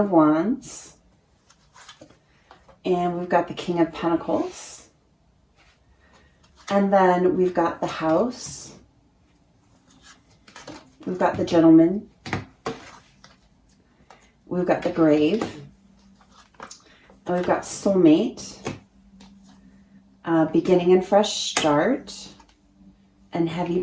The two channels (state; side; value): identical; both; correlation 1.00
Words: Wands. And we've got the King of Pentacles. And then we've got the House. We've got the Gentleman. We've got the Grave. And we've got Soulmate. Beginning and Fresh Start, and Heavy